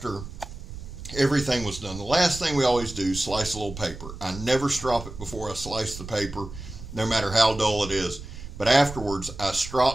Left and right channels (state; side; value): noise; right; rumble, 12 dB below the sound